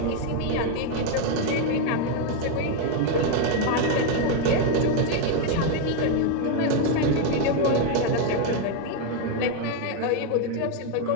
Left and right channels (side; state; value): both; different; correlation 0.01